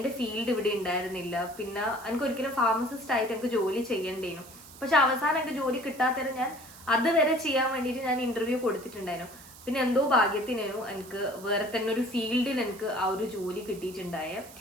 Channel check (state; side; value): noise; right; hiss, 19 dB below the sound